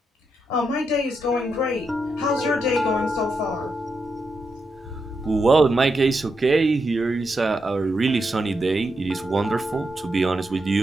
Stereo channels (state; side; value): normal; both; correlation 0.84